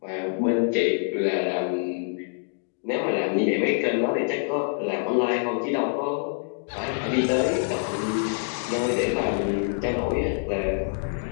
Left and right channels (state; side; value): silent; right; digital silence